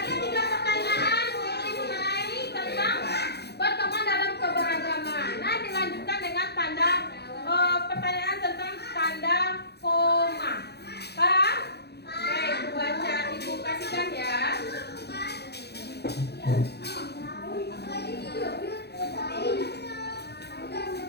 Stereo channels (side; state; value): right; late; 0.48 ms